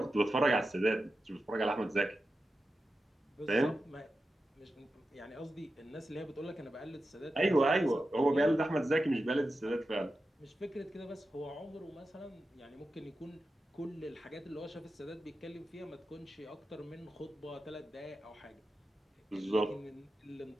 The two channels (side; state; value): both; normal; correlation 0.91